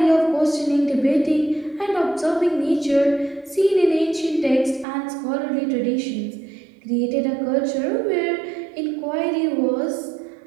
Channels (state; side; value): drops out; left; at 4.9 s